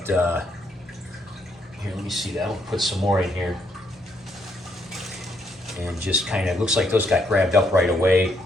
here, let me see that. I'll put some more in here. And just kind of, looks like those got grabbed up right away.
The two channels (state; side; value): normal; both; correlation 0.74